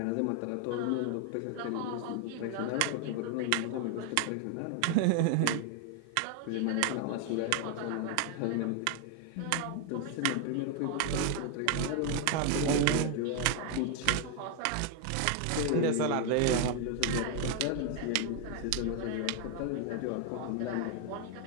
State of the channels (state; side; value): different; both; correlation 0.00